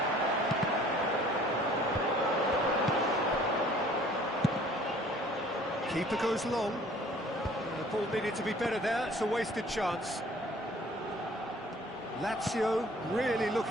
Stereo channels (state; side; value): normal; both; correlation 0.53